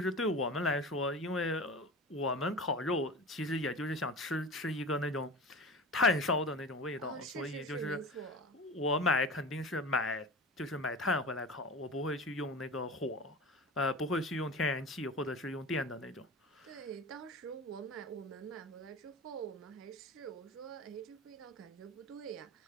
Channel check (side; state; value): both; normal; correlation 0.32